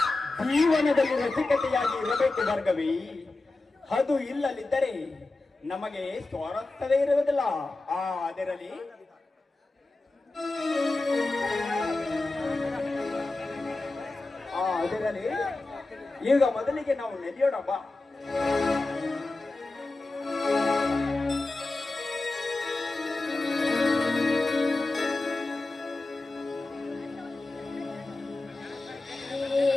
ಜೀವನದಲ್ಲಿ ರಸಿಕತೆಯಾಗಿ ಇರಬೇಕು ಭಾರ್ಗವಿ. ಅದು ಇಲ್ಲದಿದ್ದರೆ ನಮಗೆ ಸ್ವಾರಸ್ಯವೇ ಇರುವುದಿಲ್ಲ. ಅದರಲ್ಲಿ ಈಗ ಮೊದಲಿಗೆ ನಾವು ನಡೆಯೋಣ ಬಾ.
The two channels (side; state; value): right; quieter; 3.1 dB